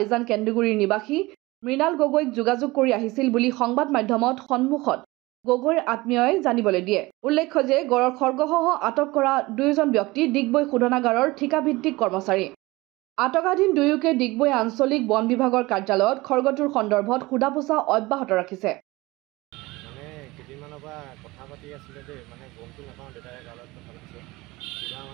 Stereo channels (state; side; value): quieter; left; 21.2 dB